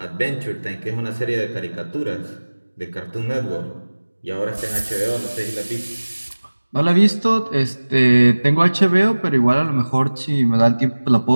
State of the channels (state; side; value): inverted; both; correlation -1.00